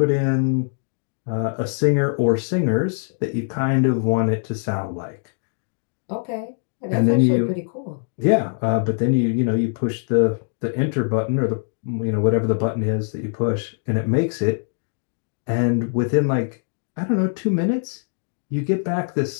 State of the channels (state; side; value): silent; right; digital silence